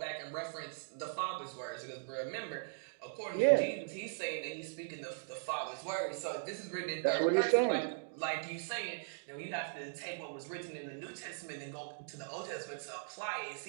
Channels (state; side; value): silent; left; digital silence